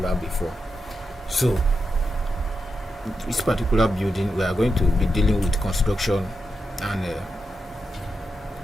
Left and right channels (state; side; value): normal; both; correlation 0.87